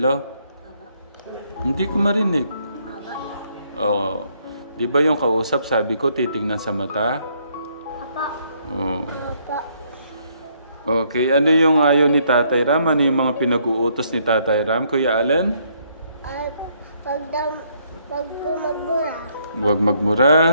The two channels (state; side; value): inverted; both; correlation -0.69